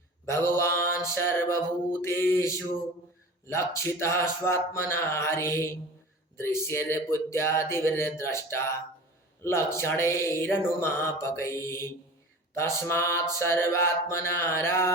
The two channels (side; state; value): both; normal; correlation 0.37